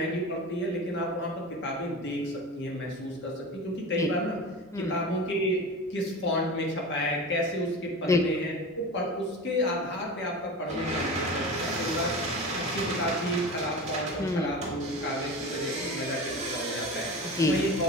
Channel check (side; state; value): both; normal; correlation 0.30